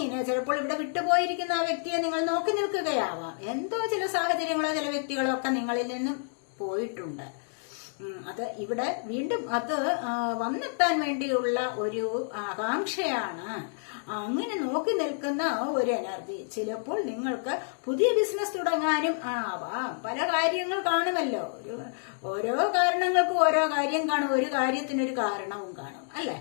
ചിലപ്പോൾ ഇവിടെ വിട്ടുപോയിരിക്കുന്ന ആ വ്യക്തിയെ നിങ്ങൾ നോക്കി നിൽക്കുകയാവാം. എന്തോ ചില സാഹചര്യങ്ങളോ ചില വ്യക്തികളോ ഒക്കെ നിങ്ങളിൽ നിന്നും പോയിട്ടുണ്ട്. അത് ഇവിടെ വീണ്ടും അത് വന്നെത്താൻ വേണ്ടിയുള്ള ഒരു ആകാംക്ഷയാണ്. അങ്ങനെ നോക്കി നിൽക്കുന്ന ഒരു എനർജി. ചിലപ്പോൾ നിങ്ങൾക്ക് പുതിയ ബിസിനസ് തുടങ്ങാനും ആവാം. പല കാര്യങ്ങൾ കാണുമല്ലോ. ഓരോ കാരണങ്ങൾക്കും ഓരോ കാര്യം കാണും, ഒരു കാര്യത്തിനൊരു കാരണവും കാണും, അല്ലെ?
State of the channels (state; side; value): silent; right; digital silence